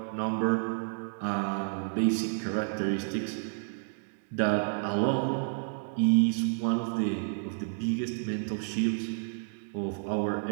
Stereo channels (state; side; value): silent; left; digital silence